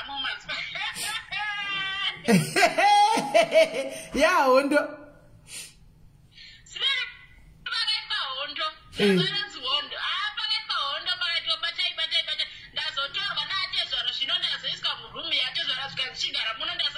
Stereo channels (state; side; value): identical; both; correlation 1.00